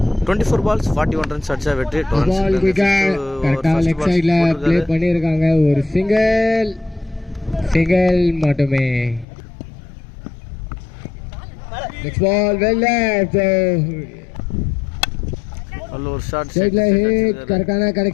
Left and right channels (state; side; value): drops out; right; at 9.2 s